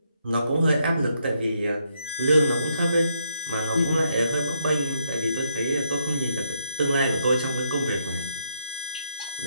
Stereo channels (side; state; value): both; inverted; correlation -0.75